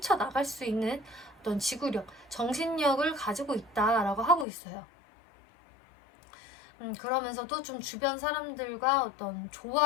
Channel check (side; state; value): right; drops out; at 4.5 s